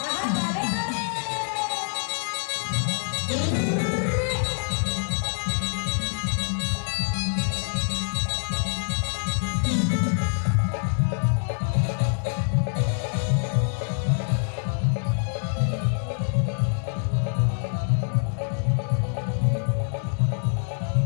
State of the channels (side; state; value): right; silent; 57 dB below the other